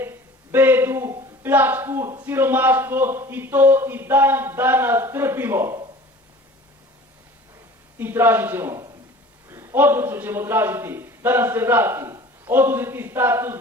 bedu, pljačku, siromaštvo i to i dan danas trpimo. I tražit ćemo, odlučno ćemo tražiti da nam se vrati oduzeti status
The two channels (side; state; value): both; normal; correlation 0.44